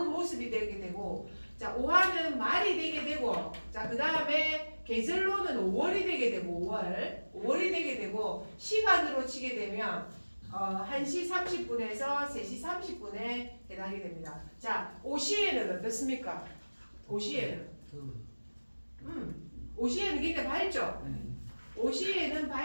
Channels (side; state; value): both; inverted; correlation -1.00